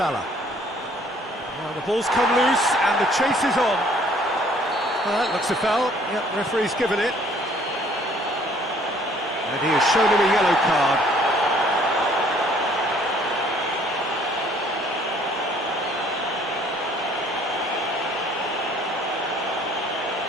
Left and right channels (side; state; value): both; normal; correlation 0.59